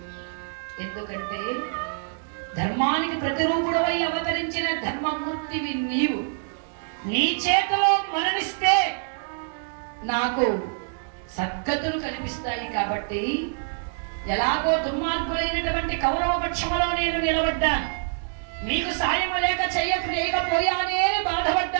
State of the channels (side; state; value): left; silent; digital silence